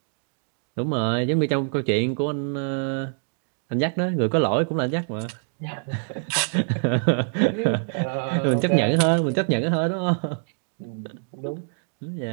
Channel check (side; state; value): left; silent; digital silence